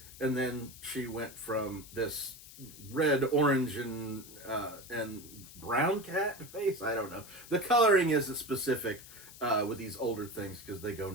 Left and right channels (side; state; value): left; noise; hiss, 17 dB below the sound